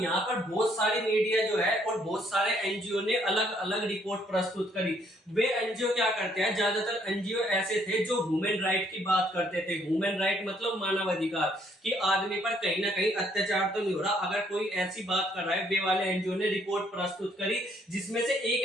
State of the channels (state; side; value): normal; both; correlation 0.67